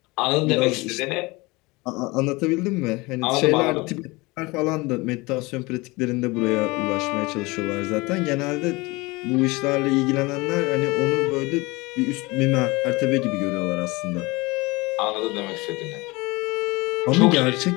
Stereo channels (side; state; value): right; quieter; 23.7 dB